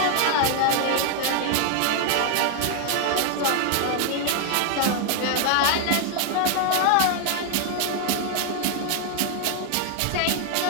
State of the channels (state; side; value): different; both; correlation 0.00